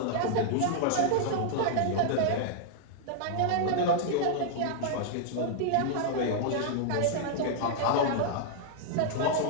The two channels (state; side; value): different; both; correlation -0.01